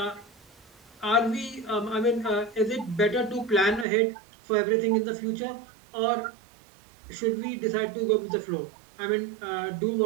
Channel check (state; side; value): drops out; left; at 3.9 s